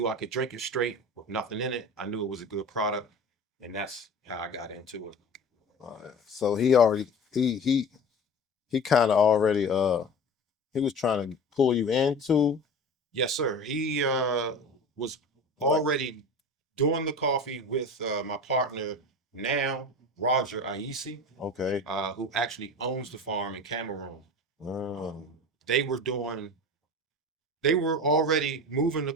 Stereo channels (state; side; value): normal; both; correlation 0.35